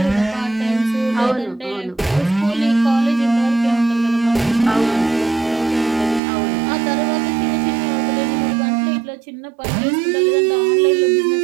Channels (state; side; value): drops out; left; at 6.2 s